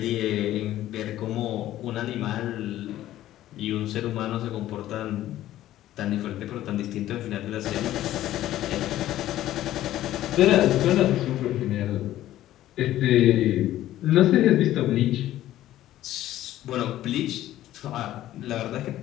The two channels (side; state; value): right; quieter; 13.8 dB